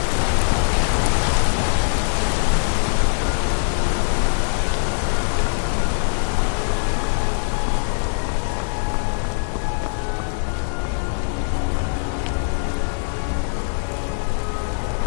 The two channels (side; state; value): right; silent; 64 dB below the other